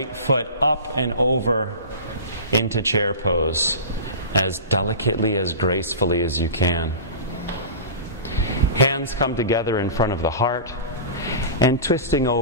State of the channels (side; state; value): both; inverted; correlation -0.31